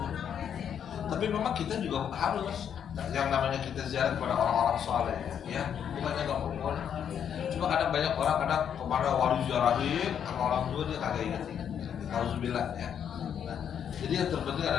Tapi memang kita juga harus yang namanya kita ziarah kepada orang-orang soleh, ya, bukannya nggak boleh. Cuma kadang banyak orang kadang kemana wali ziarahin sama orang tua dia kagak ingat. Alhamdulillah ya. Nah, jadi yang terpenting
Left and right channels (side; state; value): right; quieter; 8.5 dB